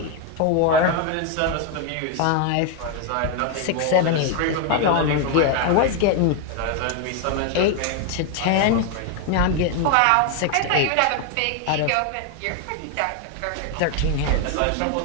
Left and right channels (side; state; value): both; different; correlation 0.01